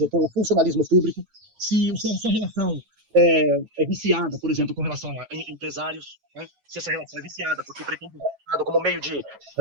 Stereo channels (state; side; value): late; left; 9.1 ms